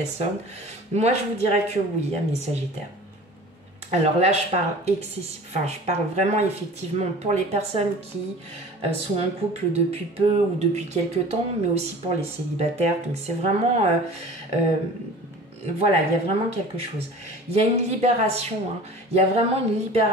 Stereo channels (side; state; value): both; normal; correlation 0.42